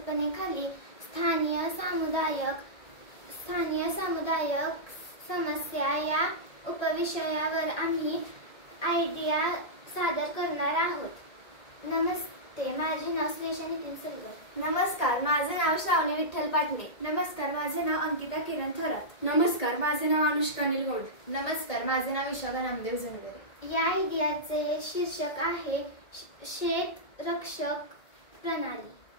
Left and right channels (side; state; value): right; late; 1.8 ms